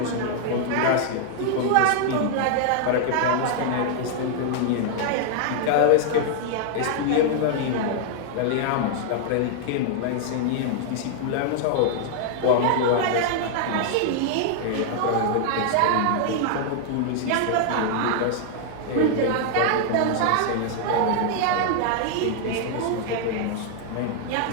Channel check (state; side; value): different; both; correlation 0.00